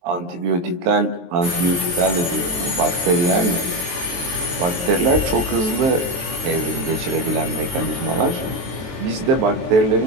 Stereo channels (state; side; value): late; left; 23 ms